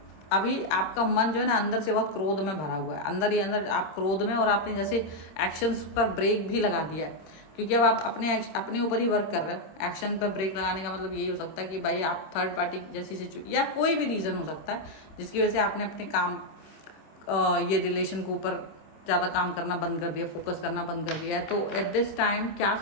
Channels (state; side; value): late; right; 26 ms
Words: अभी आपका मन जो है ना अंदर से बहुत क्रोध में भरा हुआ है, अंदर ही अंदर आप क्रोध में, और आपने जैसे एक्शंस पर ब्रेक भी लगा दिया है क्योंकि अब आप अपने ऊपर ही वर्क कर रहे हो। एक्शन पर ब्रेक लगाने का मतलब यही हो सकता है कि भाई आप थर्ड पार्टी जैसी सिचुएशन या कोई भी रीज़न हो सकता है जिसकी वजह से आपने अपने काम ये रिलेशन के ऊपर ज़्यादा काम करना बंद कर दिया, फोकस करना बंद कर दिया है। तो एट दिस टाइम क्या